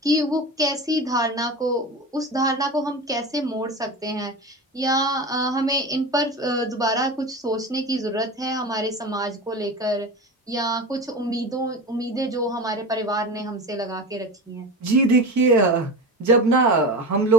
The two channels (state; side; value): normal; both; correlation 0.28